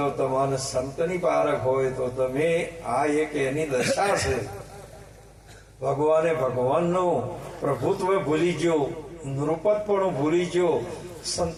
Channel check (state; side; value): identical; both; correlation 1.00